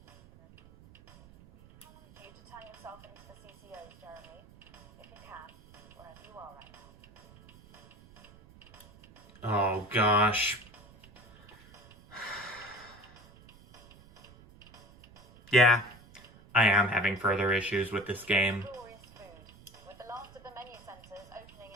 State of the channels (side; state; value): right; noise; rumble, 23 dB below the sound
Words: You to turn yourself into the CCOs, Jeremy, if you can, wherever you are right now. Oh gosh. Yeah, I am having further issues with this game. Glorious food, with the last of the menu centres opening